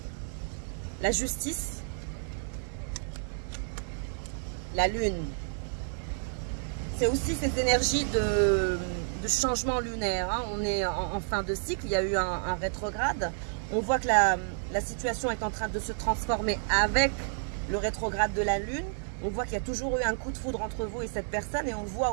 la justice, la lune. C'est aussi ces énergies de changement lunaire. Hein. On est en fin de cycle, il y a eu un rétrograde. On voit que la situation est en train de se transformer avec le rétrograde de la lune. On voit qu'il y a toujours eu un coup de foudre entre vous et cette personne, et on voit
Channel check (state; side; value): silent; left; digital silence